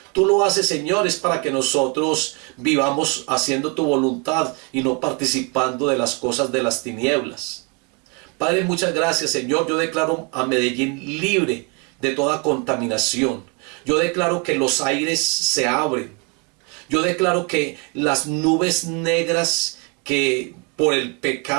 Tú lo haces, Señor, es para que nosotros vivamos haciendo tu voluntad y no participando de las cosas de las tinieblas. Padre, muchas gracias, Señor. Yo declaro a Medellín libre de toda contaminación. Yo declaro que los aires se abren. Yo declaro que las nubes negras que por el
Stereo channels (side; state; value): left; quieter; 32.8 dB